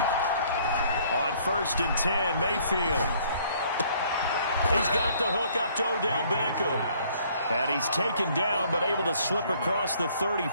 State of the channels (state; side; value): inverted; both; correlation -0.61